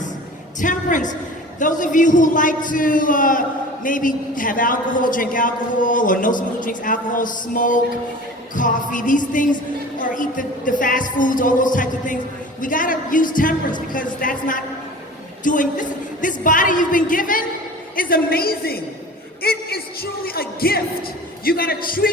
Temperance. Those of you who like to maybe have alcohol, drink alcohol, or know someone who drinks alcohol, smoke, coffee, these things, or eat the fast foods, all those types of things, we gotta use temperance because that's not doing, this body you've been given is amazing. It is truly a gift. You gotta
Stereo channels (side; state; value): both; normal; correlation 0.40